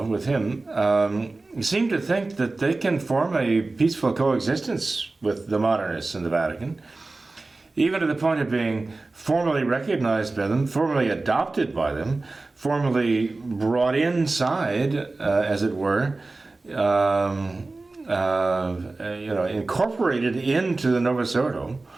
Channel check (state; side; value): quieter; left; 3.3 dB